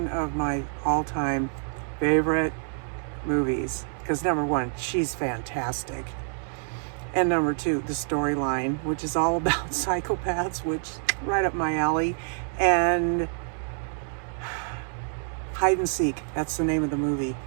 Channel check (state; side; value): silent; left; 59 dB below the other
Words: of my all-time favorite movies. Because number one, she's fantastic. And number two, the storyline, which is all about psychopaths, which right up my alley. And Hide and Seek, that's the name of the movie.